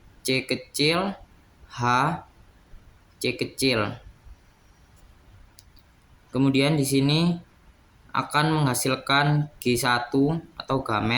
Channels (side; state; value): both; identical; correlation 1.00